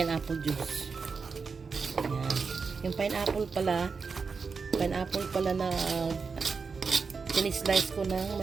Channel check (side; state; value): left; quieter; 5.1 dB